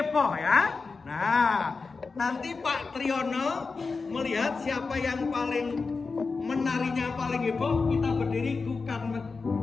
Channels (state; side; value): quieter; right; 4.4 dB